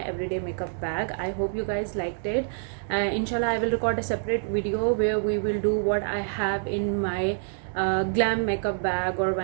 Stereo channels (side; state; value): left; silent; digital silence